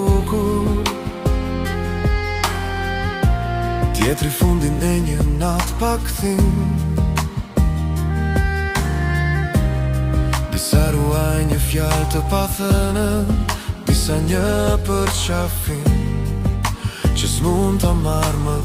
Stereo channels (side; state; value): both; identical; correlation 1.00